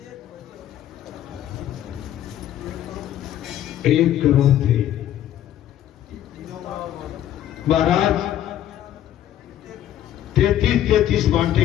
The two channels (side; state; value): right; quieter; 11.7 dB